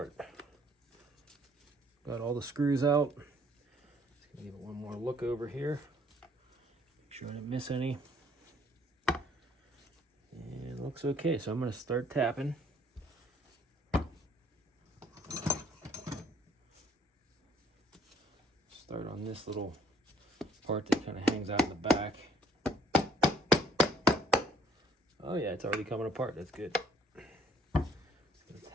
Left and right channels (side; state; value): both; normal; correlation 0.62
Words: Got all the screws out. Just gonna give it one more look over here. Make sure I didn't miss any. And it looks okay, so I'm gonna start tapping. Start on this little part that kind of hangs out in the back. Oh yeah, it's already coming apart. That's good. Let's